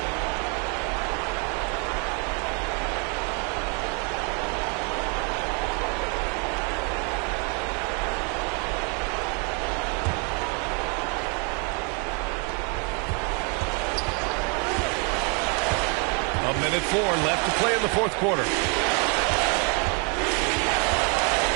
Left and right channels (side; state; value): left; quieter; 36.0 dB